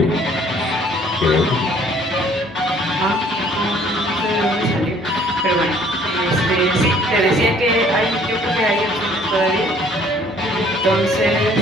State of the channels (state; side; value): normal; both; correlation 0.58